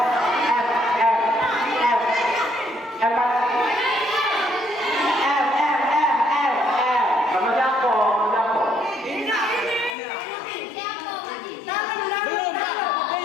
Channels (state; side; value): drops out; right; at 10.0 s